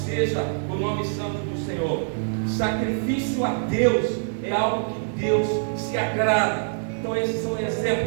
o nome santo do Senhor. Sacrifício a Deus é algo que Deus se agrada. Então esses são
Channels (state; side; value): silent; left; digital silence